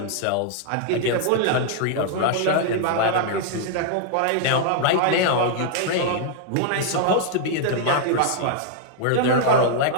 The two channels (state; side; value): different; both; correlation -0.01